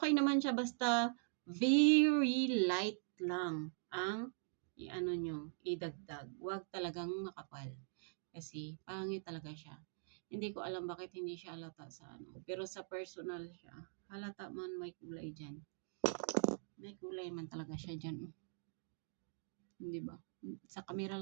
naman siya basta very light lang ang idagdag. Huwag talagang makapal. Kasi pangit talaga siya. Hindi ko alam bakit hindi siya halata sa ano. Pero sa personal siya, halata man may kulay dyan. May kulay man talaga siya dyan. Hindi ba? Sa camera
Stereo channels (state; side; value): silent; left; digital silence